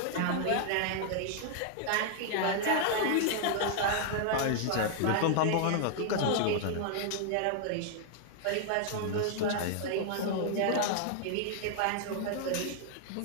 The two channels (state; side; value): different; both; correlation -0.01